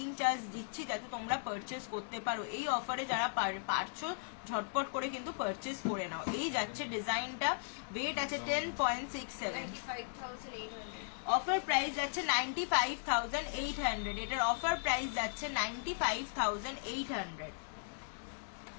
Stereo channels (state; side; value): silent; right; 53 dB below the other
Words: চার্জ দিচ্ছি যাতে তোমরা পারচেস করতে পারো এই অফারে যারা পারছো ঝটপট করে কিন্তু পারচেস করে নাও এই যাচ্ছে ডিজাইনটা ওয়েট আছে 10.67 অফার প্রাইস যাচ্ছে 95,800 এটার অফার প্রাইস যাচ্ছে 95,800